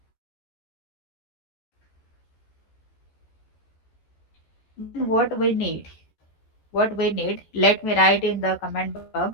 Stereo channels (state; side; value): late; right; 14 ms